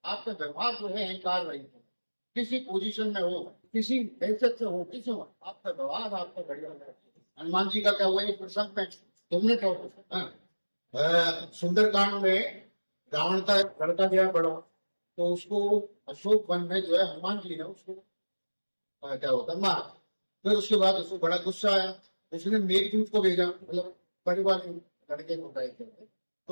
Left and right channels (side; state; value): both; inverted; correlation -1.00